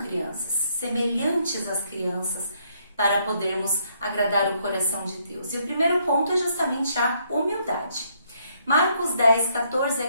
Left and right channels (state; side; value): inverted; both; correlation -0.71